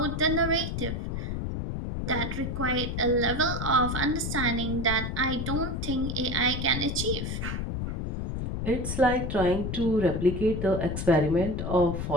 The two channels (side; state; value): left; noise; rumble, 3 dB below the sound